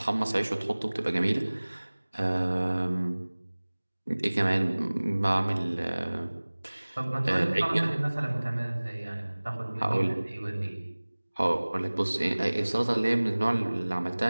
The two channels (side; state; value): both; inverted; correlation -1.00